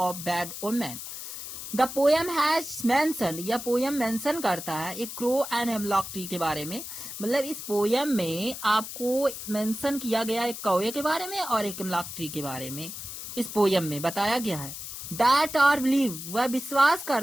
bad omen. The poem has mentioned, यह पोयम मेंशन करता है एक क्रो एंड हेमलॉक ट्री के बारे में। मतलब इस poem में आपको मेंशन किया गया एक कौवे के बारे में और एक हेमलॉक ट्री के बारे में इस पोयम में बताया गया है। That are believed, वह विश्वास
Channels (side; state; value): left; noise; hiss, 9 dB below the sound